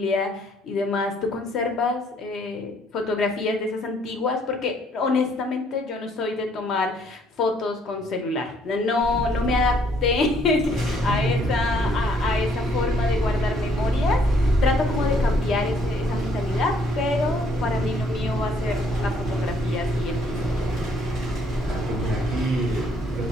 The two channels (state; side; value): normal; both; correlation 0.66